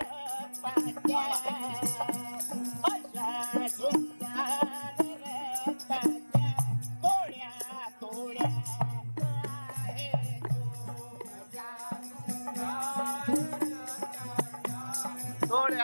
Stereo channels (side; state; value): both; inverted; correlation -1.00